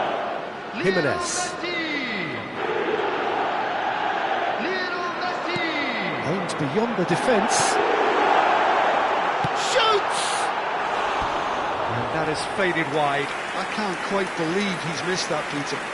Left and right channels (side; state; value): both; identical; correlation 1.00